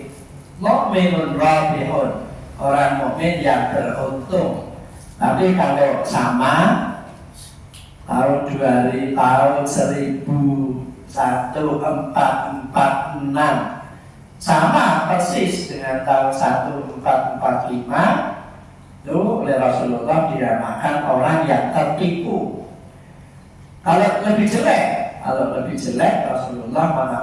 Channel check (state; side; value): identical; both; correlation 1.00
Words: mukminun rabihun, orang mukmin yang beruntung. Tapi kalau sama tahun 1446 sama persis dengan tahun 1445, itu oleh Rasulullah dinamakan orang yang tertipu. Kalau lebih jelek Rasulullah